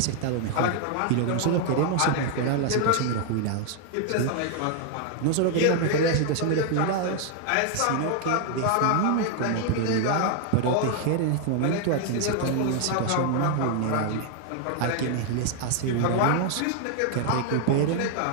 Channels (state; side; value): different; both; correlation 0.00